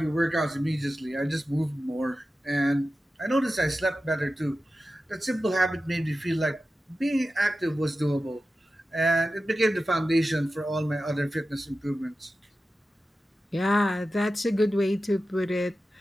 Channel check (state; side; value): normal; both; correlation 0.93